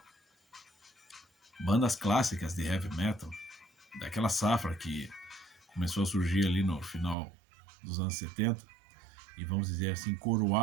Bandas clássicas de heavy metal, daquela safra que começou a surgir ali no final dos anos 70, e vamos dizer assim,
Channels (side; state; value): left; drops out; at 7.2 s